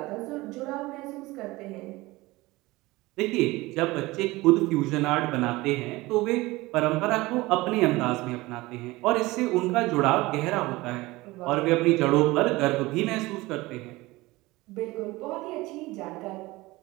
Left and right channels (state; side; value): quieter; left; 20.5 dB